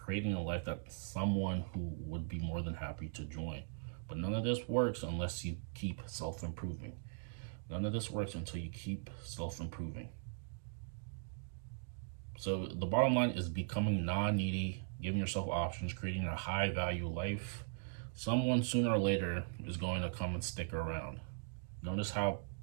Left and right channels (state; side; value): silent; left; digital silence